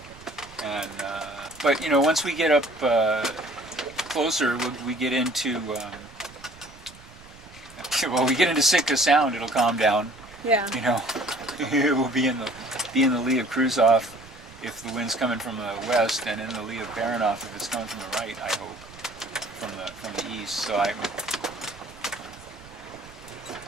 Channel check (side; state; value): right; noise; rumble, 21 dB below the sound